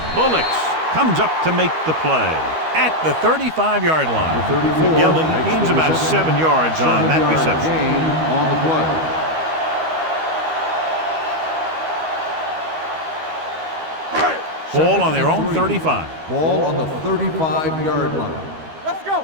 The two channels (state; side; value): late; left; 13 ms